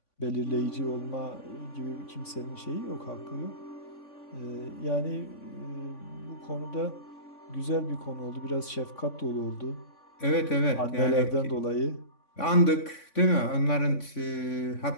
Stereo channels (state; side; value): late; right; 3.5 ms